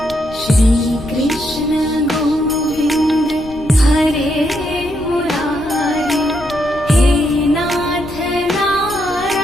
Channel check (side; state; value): left; noise; rumble, 17 dB below the sound